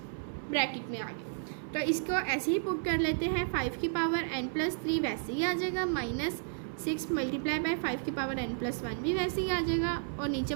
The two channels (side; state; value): left; silent; 56 dB below the other